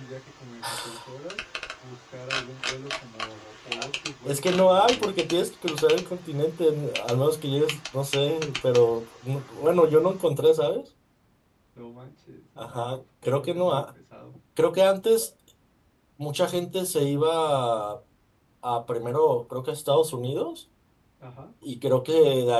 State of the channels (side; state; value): both; identical; correlation 1.00